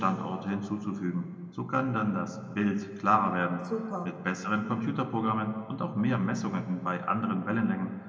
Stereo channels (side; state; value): both; identical; correlation 1.00